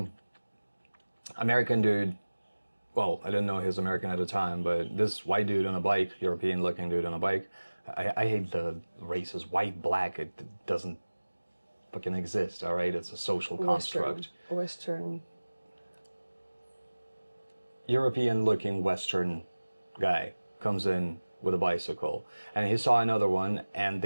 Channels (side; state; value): both; inverted; correlation -1.00